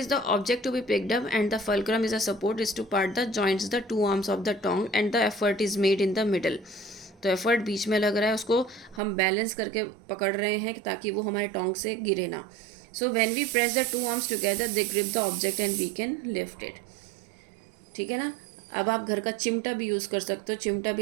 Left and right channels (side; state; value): left; drops out; at 9.0 s